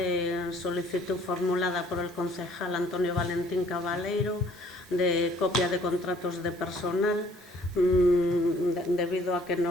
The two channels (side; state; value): both; normal; correlation 0.59